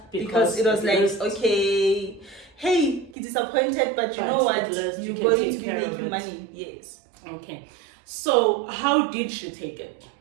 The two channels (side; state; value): left; drops out; at 3.2 s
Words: because it was like, okay, hey, you're disappointed, but you know what? You're going to be making money. Yes. Okay. So, how did she take it?